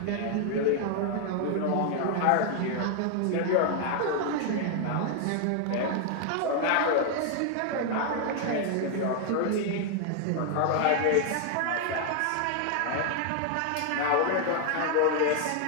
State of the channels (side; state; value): both; different; correlation 0.00